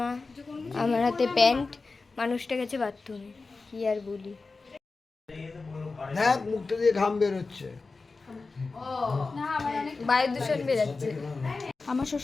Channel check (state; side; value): quieter; right; 4.0 dB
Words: আমার হাতে প্যান্ট, মানুষটা গেছে বাথরুমে। কি আর বলি, হ্যাঁ মুখটা দিয়ে ঘাম বের হচ্ছে, বায়ু দূষণ বেরাচ্ছে। আমার